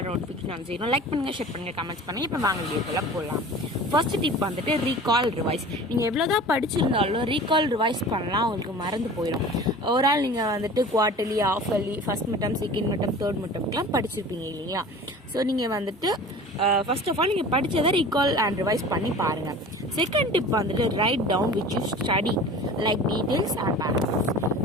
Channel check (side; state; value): both; normal; correlation 0.40